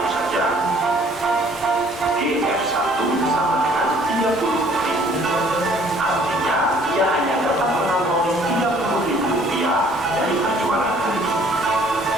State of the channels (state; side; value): normal; both; correlation 0.58